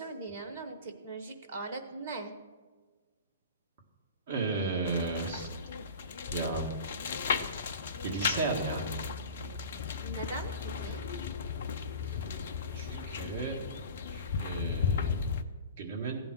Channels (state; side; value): inverted; both; correlation -0.36